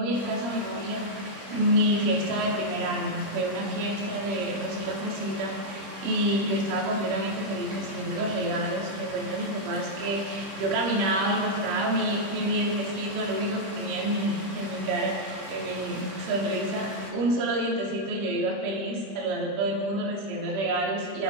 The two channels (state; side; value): late; left; 25 ms